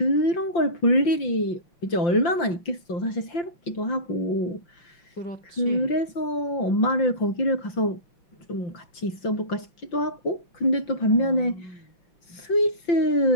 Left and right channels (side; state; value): right; late; 5.8 ms